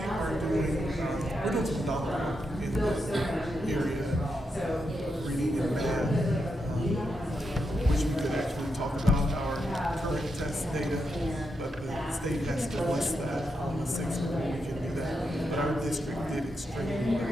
doing, we're doing some dollar work in the area, reading and math. Which we could actually talk about our current test data, but the state has to list that on the 6th before we can do that. But our district did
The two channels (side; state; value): both; normal; correlation 0.84